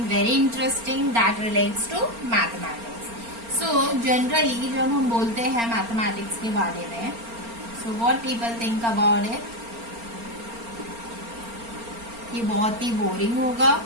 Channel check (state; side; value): late; left; 4.3 ms